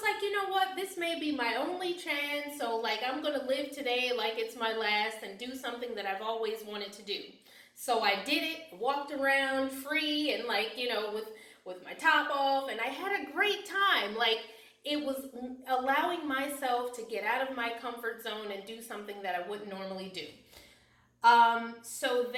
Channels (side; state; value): both; identical; correlation 1.00